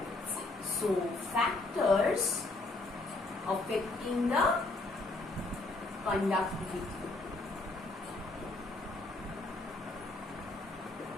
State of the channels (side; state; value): right; quieter; 3.1 dB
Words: So factors affecting the conductivity.